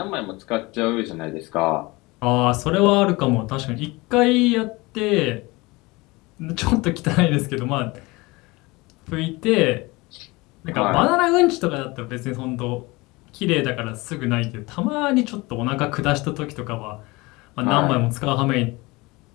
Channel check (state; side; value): quieter; right; 23.2 dB